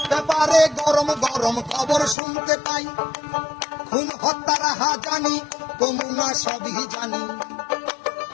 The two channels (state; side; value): drops out; right; at 2.1 s